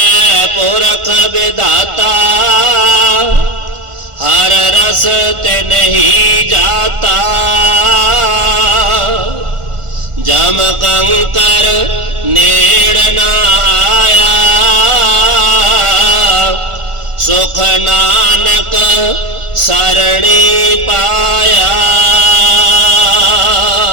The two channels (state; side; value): late; left; 1.4 ms